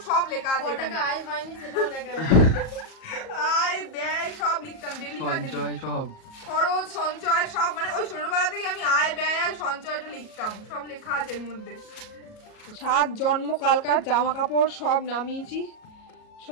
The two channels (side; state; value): right; late; 37 ms